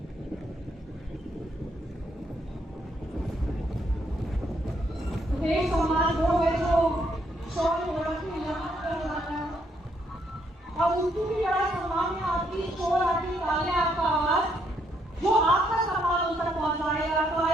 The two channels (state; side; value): normal; both; correlation 0.73